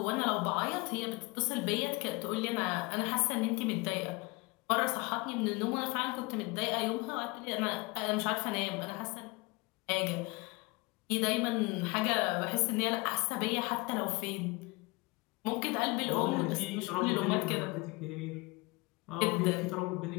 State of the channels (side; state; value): right; quieter; 25.6 dB